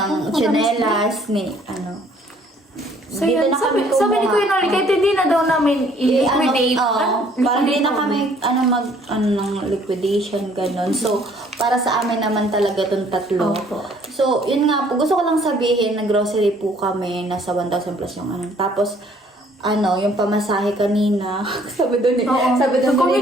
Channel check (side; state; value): both; normal; correlation 0.60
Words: tsinelas, So yun, sabi ni Kuya Noli, kahit hindi na daw namin i-liquidate. Parang hindi na kami ng liquidation, ganun. So, para sa amin naman talaga itong tatlo. Opo. So, yun nga po, gusto ko lang sabihin, nag-grocery po kami, nasa 1,000 plus yung Tapos, yung pamasahe kanina, sabi doon Oo. sabi doon